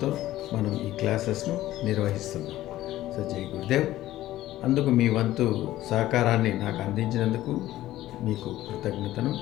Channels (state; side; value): quieter; right; 14.9 dB